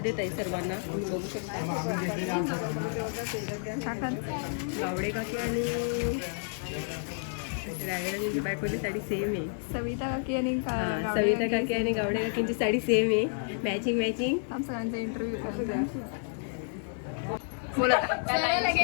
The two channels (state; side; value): silent; right; digital silence